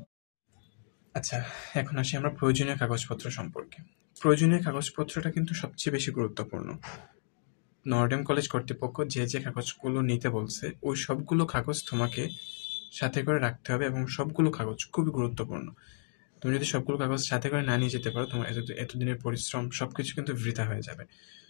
আচ্ছা, এখন আসি আমরা প্রয়োজনীয় কাগজপত্র সম্পর্কে। প্রয়োজনীয় কাগজপত্রটা কিন্তু সবচেয়ে বেশি গুরুত্বপূর্ণ। নটরডেম কলেজ কর্তৃপক্ষ যে কাগজগুলো নিতে বলছে, ওই সবগুলো কাগজ তোমাকে সাথে করে রাখতে হবে এবং সবগুলো কাগজ খুবই গুরুত্বপূর্ণ। তুমি যদি সবগুলো কাগজ সাথে করে না নিয়ে যেতে পারো, তোমার এতদিনের পরিশ্রম সব কিছু কিন্তু বৃথা হয়ে যাবে।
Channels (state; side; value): silent; right; digital silence